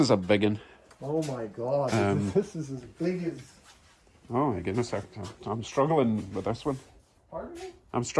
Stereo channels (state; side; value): identical; both; correlation 1.00